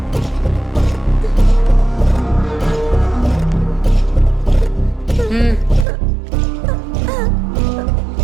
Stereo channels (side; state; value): left; drops out; at 5.9 s